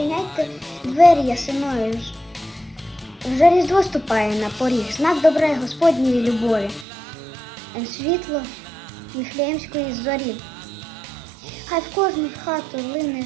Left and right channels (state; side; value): drops out; left; at 6.9 s